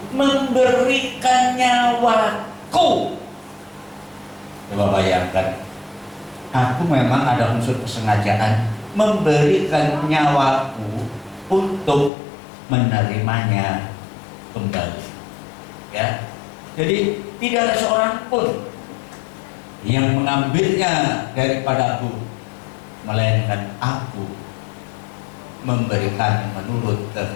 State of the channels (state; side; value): drops out; right; at 12.1 s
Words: memberikan nyawaku." Coba bayangkan, aku memang ada unsur kesengajaan memberikan nyawaku untuk menerimanya kembali. Ya, jadi tidak ada seorang pun yang mengambilnya daripadaku, melainkan aku memberikan menurut